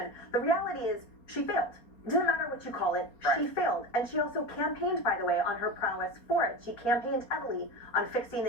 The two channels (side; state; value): right; late; 4.3 ms